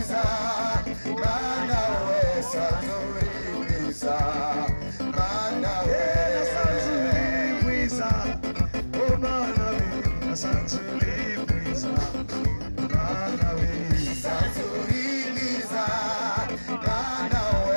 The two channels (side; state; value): both; inverted; correlation -1.00